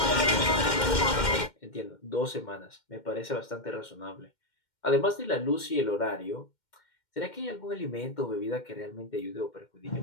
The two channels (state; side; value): late; right; 2.1 ms